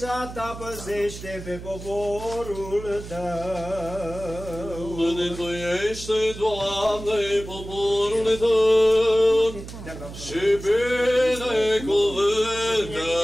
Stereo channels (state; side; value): noise; right; hum, 12 dB below the sound